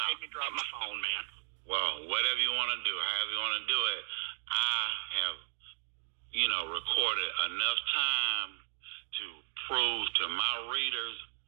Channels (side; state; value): left; silent; digital silence